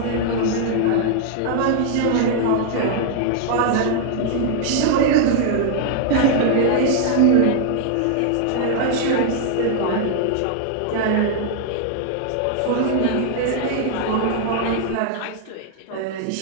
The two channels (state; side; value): different; both; correlation 0.00